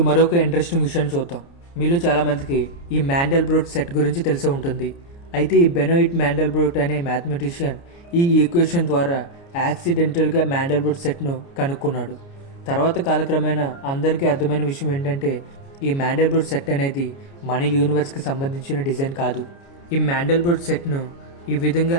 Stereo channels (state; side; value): late; right; 29 ms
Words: మరొక ఇంట్రెస్టింగ్ విషయాన్ని చూద్దాం. మీలో చాలామందికి ఈ మ్యాండెల్బ్రోట్ సెట్ గురించి తెలిసే ఉంటుంది. అయితే ఈ బెనోయిట్ మ్యాండెల్బ్రోట్ అనే మ్యాథమెటిషియన్ ఈ ఈక్వేషన్ ద్వారా యాక్సిడెంటల్గా మ్యాండెల్బ్రోట్ సెట్ను కనుక్కున్నాడు. తర్వాత కాలక్రమేణా అందరికీ అర్థమైన విషయం ఏంటంటే ఈ మ్యాండల్బ్రూట్ సెట్ అనేది మన యూనివర్స్కి సంబంధించిన డిజైన్ కాదు. ఈ మ్యాండల్బ్రూట్ సెట్ను ఈ విధంగా